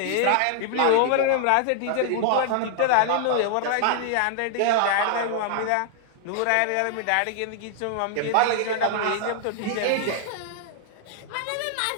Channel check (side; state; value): both; different; correlation 0.00